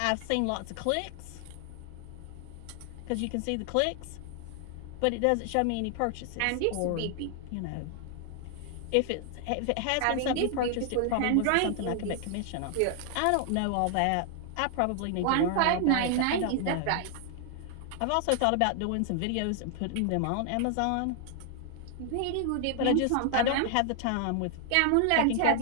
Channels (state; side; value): different; both; correlation 0.00